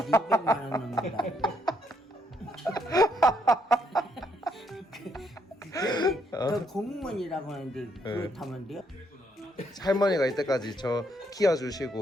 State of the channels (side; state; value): both; normal; correlation 0.74